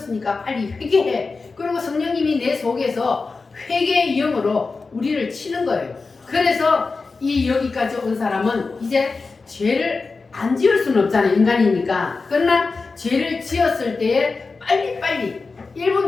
빨리 회개해. 그리고 성령님이 내 속에서 회개의 영으로 우리를 치는 거예요. 그래서 이 여기까지 온 사람은 이제 죄를 안 지을 수는 없잖아요. 인간이니까. 그러나 죄를 지었을 때에 빨리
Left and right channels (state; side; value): quieter; right; 4.2 dB